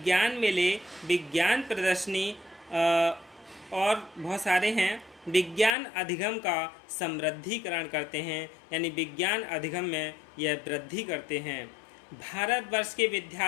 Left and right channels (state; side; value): drops out; right; at 5.7 s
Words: मेले, विज्ञान प्रदर्शनी और बहुत सारे हैं, विज्ञान अधिगम का समृद्धिकरण करते हैं, यानी विज्ञान अधिगम में यह वृद्धि करते हैं। भारतवर्ष के